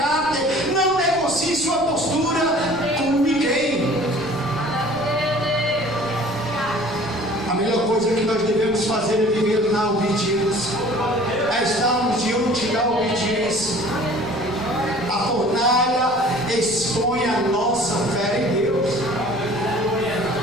não negocie sua postura com ninguém. A melhor coisa que nós devemos fazer é viver na obediência, é estarmos diante da obediência. A fornalha expõe a nossa fé em Deus.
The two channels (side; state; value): left; noise; rumble, 19 dB below the sound